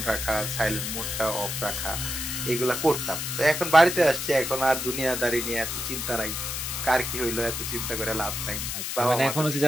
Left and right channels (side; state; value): left; noise; hiss, 4 dB below the sound